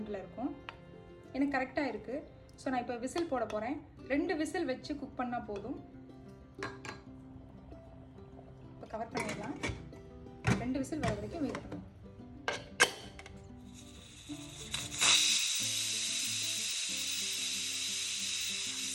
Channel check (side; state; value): both; identical; correlation 1.00